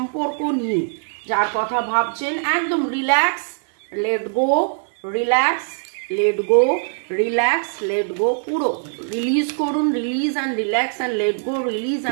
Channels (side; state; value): left; silent; 65 dB below the other